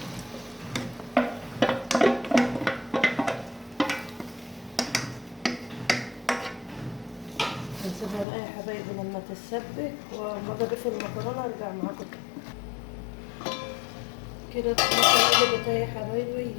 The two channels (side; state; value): right; drops out; at 8.2 s